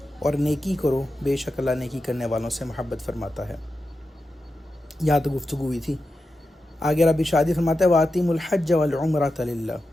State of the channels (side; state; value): both; normal; correlation 0.90